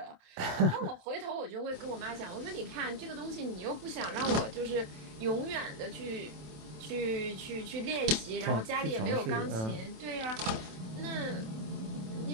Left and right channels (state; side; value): late; left; 27 ms